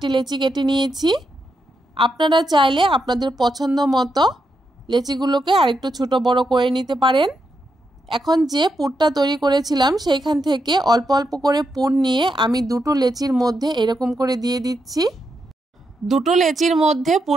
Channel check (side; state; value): both; normal; correlation 0.83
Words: লেচি কেটে নিয়েছি। আপনারা চাইলে আপনাদের পছন্দ মতো লেচিগুলোকে আরেকটু ছোট বড় করে নিতে পারেন। এখন যে পুরটা তৈরি করেছিলাম সেইখান থেকে অল্প অল্প করে পুর নিয়ে আমি 2টো লেচির মধ্যে এরকম করে দিয়ে দিচ্ছি। 2টো লেচির মধ্যে